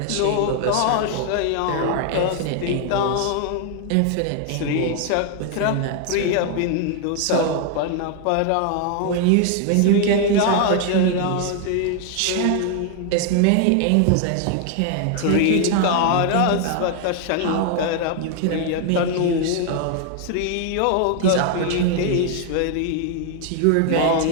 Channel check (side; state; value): both; different; correlation 0.00